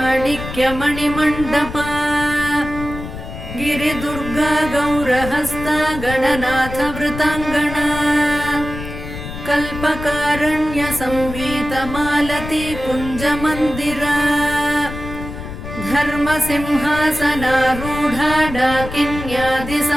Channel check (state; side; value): noise; left; rumble, 9 dB below the sound